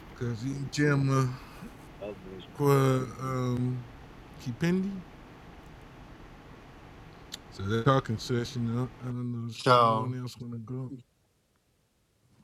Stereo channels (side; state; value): both; identical; correlation 1.00